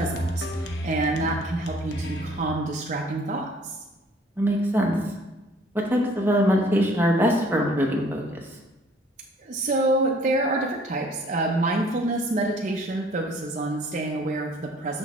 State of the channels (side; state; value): both; normal; correlation 0.56